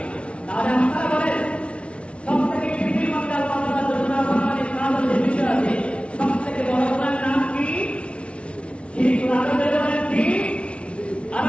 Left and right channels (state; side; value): late; right; 0.060 ms